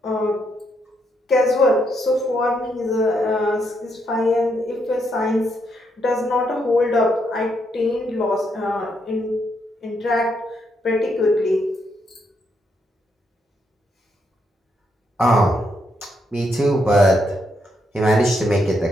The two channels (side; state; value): both; normal; correlation 0.77